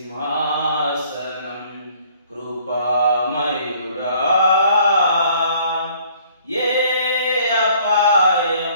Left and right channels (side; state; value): both; inverted; correlation -0.58